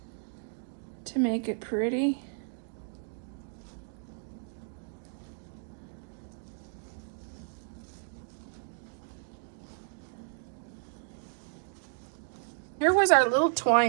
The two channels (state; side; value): silent; left; digital silence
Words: to make it pretty. Here was our little